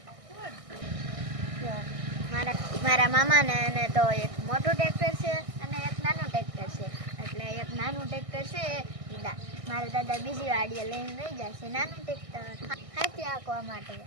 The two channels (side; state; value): left; late; 1.6 ms